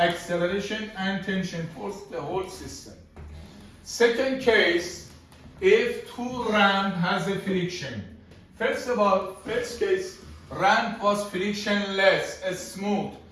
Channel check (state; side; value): identical; both; correlation 1.00